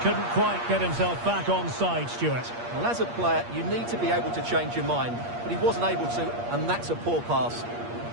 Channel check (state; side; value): late; left; 8.5 ms